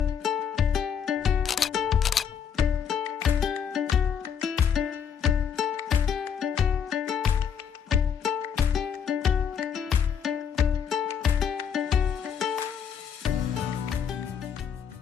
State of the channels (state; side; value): quieter; right; 7.6 dB